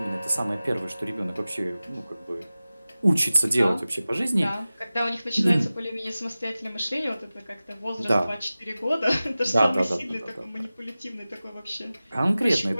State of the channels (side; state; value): both; inverted; correlation -0.97